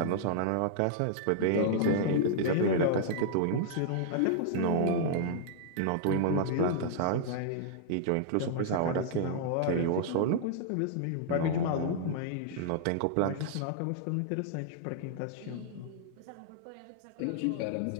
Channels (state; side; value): different; both; correlation -0.01